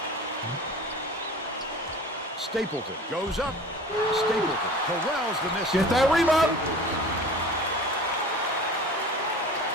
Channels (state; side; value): normal; both; correlation 0.40